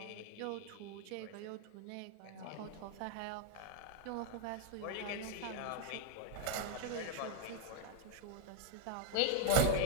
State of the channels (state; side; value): different; both; correlation 0.01